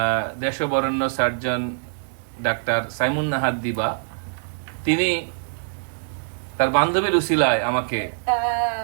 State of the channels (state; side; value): silent; left; digital silence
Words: দেশবরেণ্য সার্জন ডাক্তার সাইমুন নাহার দিবা, তিনি তার বান্ধবীর উসিলায়